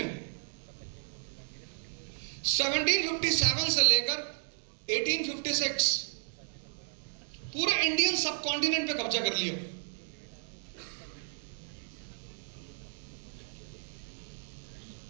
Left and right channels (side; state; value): left; silent; digital silence